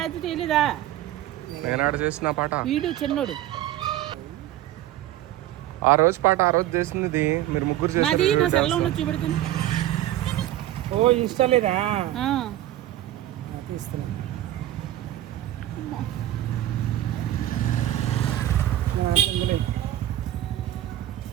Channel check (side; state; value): left; quieter; 13.7 dB